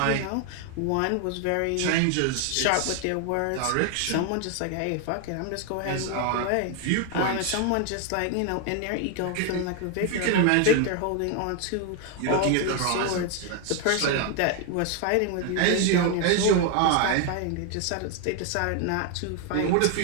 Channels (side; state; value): both; different; correlation 0.01